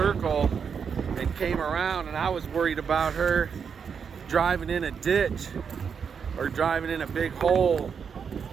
and came around, and I was worried about her driving in a ditch or driving in a big hole.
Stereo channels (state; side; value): quieter; left; 6.6 dB